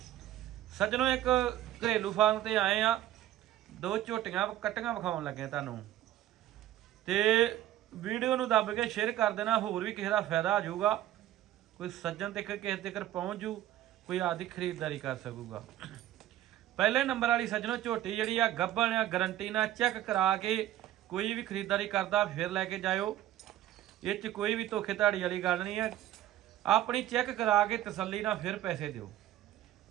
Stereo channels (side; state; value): left; quieter; 13.2 dB